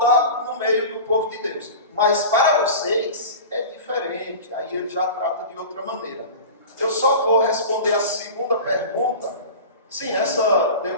no meio do povo de Deus. Mas para vocês é diferente. Aí ele já trata de outra maneira. Eu só vou responder a segunda pergunta. Sim, essa deu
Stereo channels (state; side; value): inverted; both; correlation -0.33